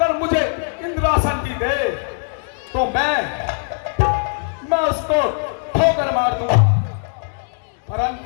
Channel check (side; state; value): right; silent; 57 dB below the other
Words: मुझे इंद्रासन की दे तो मैं उसको ठोकर मार दूंगा।